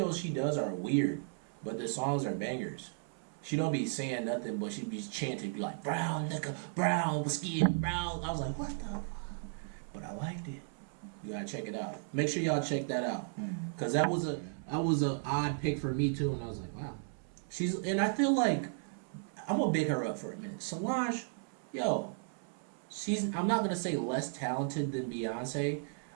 she does are weird, but the songs are bangers. She don't be saying nothing, but she be chanting, be like brown liquor, brown skin, brown. I was like, what the fuck? But I liked it. You gotta check it out. Make sure y'all check that out, cause that was a odd pick for me too. And I was like, wow, and I feel like I'm gonna big her up for a minute. Solange, I'm not gonna say less talented than Beyonce.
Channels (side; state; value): left; silent; 54 dB below the other